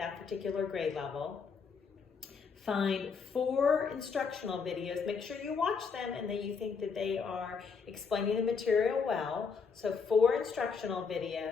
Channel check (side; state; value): right; quieter; 5.6 dB